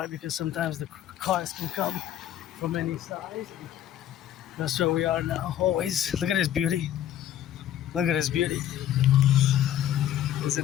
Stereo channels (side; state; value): right; quieter; 11.4 dB